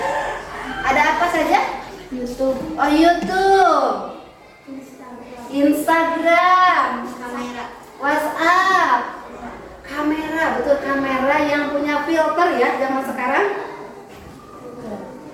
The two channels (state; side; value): identical; both; correlation 1.00